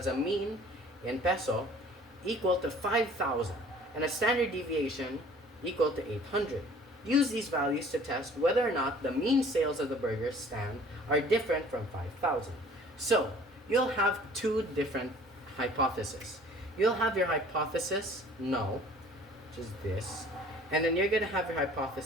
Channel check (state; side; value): normal; both; correlation 0.51